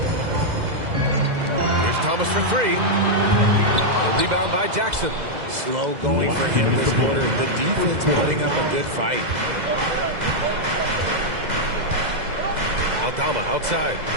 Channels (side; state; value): left; late; 2.0 ms